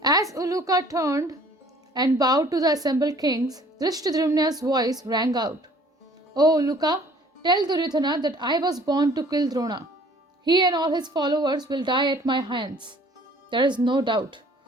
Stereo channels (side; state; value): both; normal; correlation 0.55